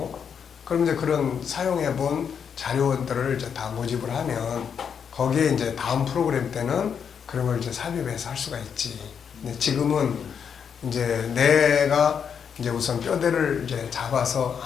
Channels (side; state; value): right; quieter; 7.2 dB